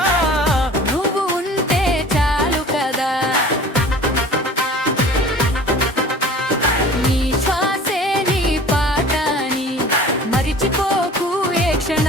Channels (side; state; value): both; normal; correlation 0.44